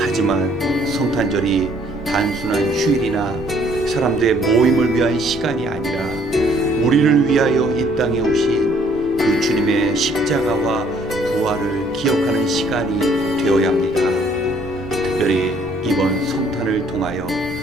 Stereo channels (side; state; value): both; normal; correlation 0.62